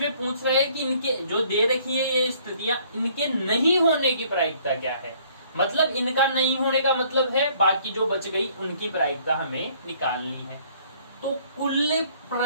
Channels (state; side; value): inverted; both; correlation -0.60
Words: पूछ रहा है कि इनके जो दे रखी है ये स्थितियां, इनके नहीं होने की प्रायिकता क्या है। मतलब इनका नहीं होने का मतलब है बाकी जो बच गई उनकी प्रायिकता हमें निकालनी है। तो कुल